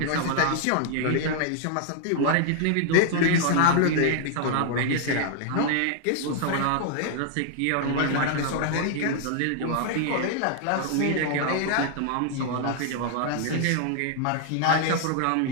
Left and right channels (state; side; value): different; both; correlation 0.00